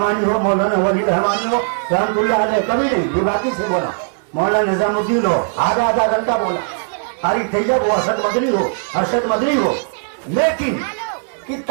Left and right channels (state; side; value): silent; left; digital silence